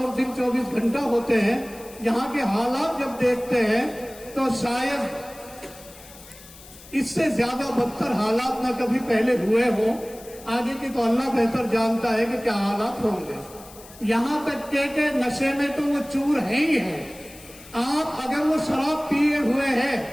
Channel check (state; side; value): noise; left; hiss, 20 dB below the sound